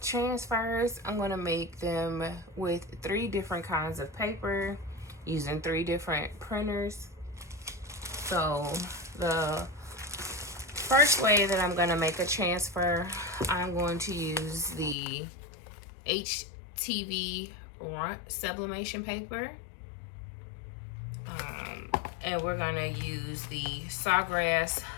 transfers. I'm going to make them with 3 different kinds of paper using 3 different printers. So the first way that I'm going to make a transfer, I'm going to use the HTV sublimation paper. And we're going to use the Sawgrass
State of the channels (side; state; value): right; drops out; at 15.0 s